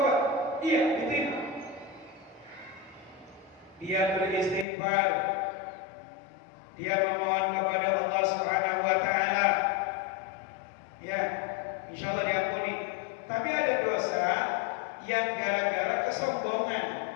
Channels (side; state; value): right; drops out; at 4.7 s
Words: iya diterima. Dia beristighfar, dia memohon kepada Allah Subhanahu wa Ta'ala, ya, insya Allah diampuni. Tapi ada dosa yang gara-gara kesombongan,